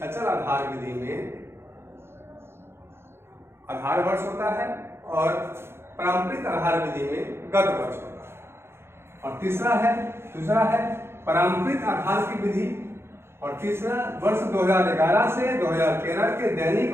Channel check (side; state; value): left; late; 0.12 ms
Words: अचल आधार विधि में आधार वर्ष होता है और पारंपरिक आधार विधि में गत वर्ष होता है। और दूसरा है पारंपरिक आधार की विधि, और तीसरा वर्ष 2011 से 2013 के